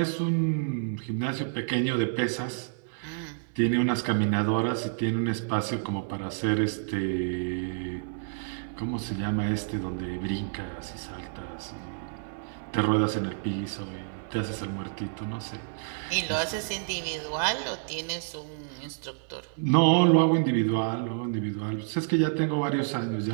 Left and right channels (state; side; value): silent; left; digital silence